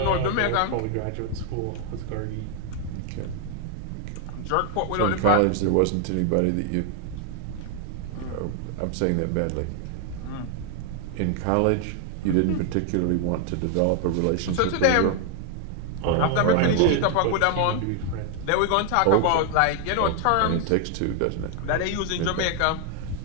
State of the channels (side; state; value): both; different; correlation 0.00